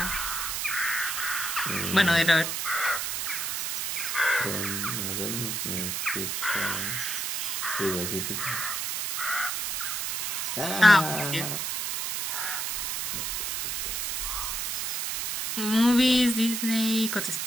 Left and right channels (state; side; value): noise; right; hiss, 1 dB below the sound